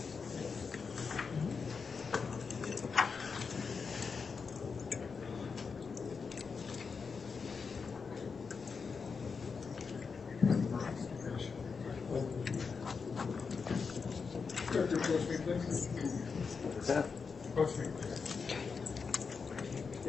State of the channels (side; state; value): right; quieter; 5.3 dB